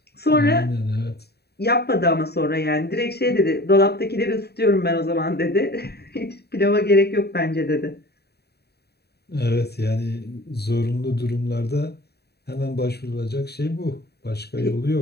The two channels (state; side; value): late; right; 0.47 ms